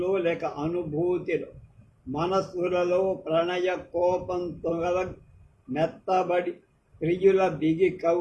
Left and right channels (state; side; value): identical; both; correlation 1.00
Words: లేక అనుభూతిలో మనస్సులలో ప్రణయ కోపంతో మెత్తబడి ప్రియుల బిగి